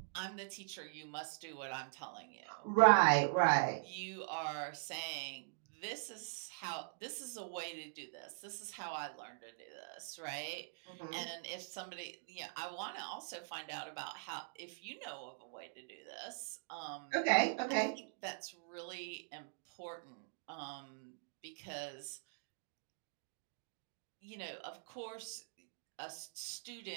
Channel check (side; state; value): left; silent; digital silence